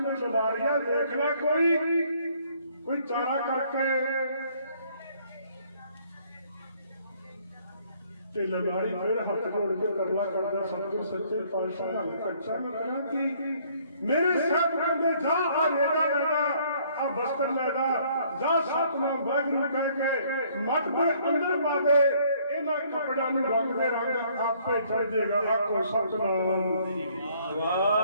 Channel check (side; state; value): both; inverted; correlation -0.62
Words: ललारिया देखना कोई चारा करके ते ललारी फिर हाथ जोड़ के करना करता सतगुरु सच्चे पातशाह कच्चा में कहना कि मेरे साथ कहते जा आ रेदा लेदा आ बस्तर लेदा जा सतनाम वाहिगुरू कह के मत पे अंदर पा दे इन्हां कपड़ियां नूं रंग दे रंग आपे चढ़ जाएगा आखो सतनाम